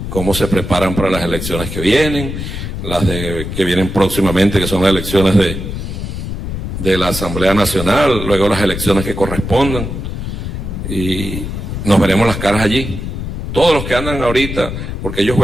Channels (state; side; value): noise; left; rumble, 5 dB below the sound